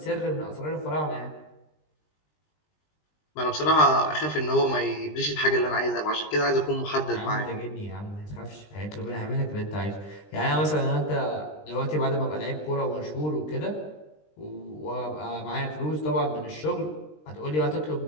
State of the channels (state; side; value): late; right; 20 ms